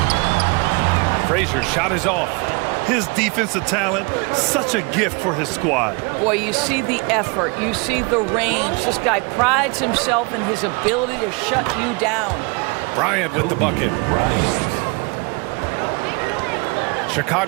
Frazier's shot is off. His defensive talent, such a gift for his squad. Boy, you see the effort, you see the range. This guy prides himself in his ability to shut you down. Bryant with the bucket.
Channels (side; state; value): left; quieter; 30.2 dB